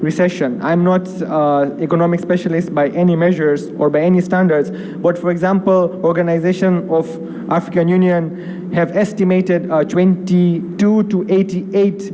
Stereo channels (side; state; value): both; identical; correlation 1.00